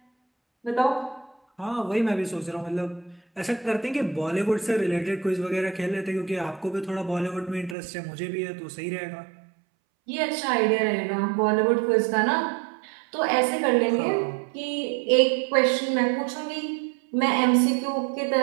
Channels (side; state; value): left; drops out; at 7.8 s